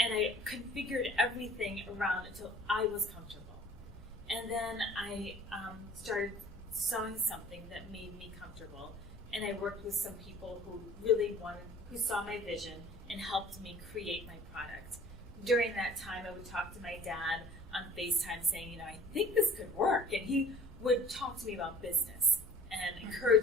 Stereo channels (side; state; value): both; normal; correlation 0.48